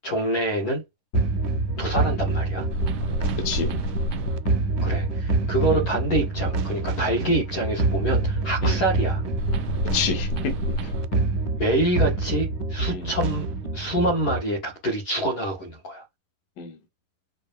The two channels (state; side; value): late; right; 11 ms